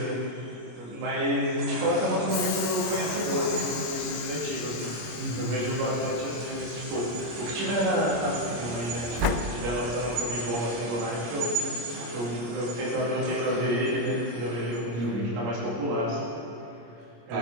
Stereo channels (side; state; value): left; late; 25 ms